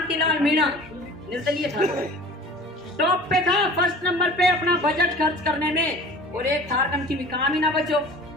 मीणा निर्दलीय था, टॉप पे था, फर्स्ट नंबर पे अपना बजट खर्च करने में, और एक थार कम की भी काम ही ना बचो,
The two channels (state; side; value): normal; both; correlation 0.42